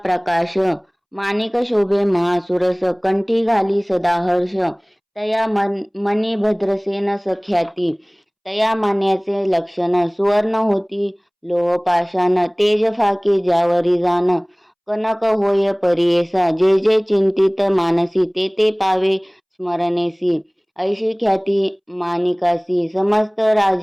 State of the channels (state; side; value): identical; both; correlation 1.00